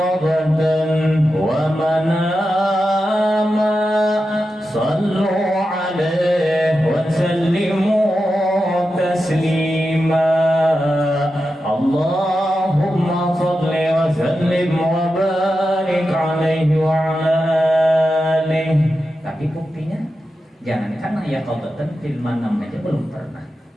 wa manama sallu alaihi wa sallimu taslima. Allahumma salli wa sallim wa barik alaihi wa ala alihi. Tapi buktinya jangankan ya qadatan fil manam aja belum pernah.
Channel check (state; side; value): normal; both; correlation 0.90